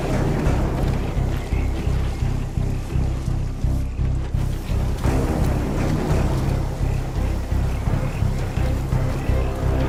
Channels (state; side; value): identical; both; correlation 1.00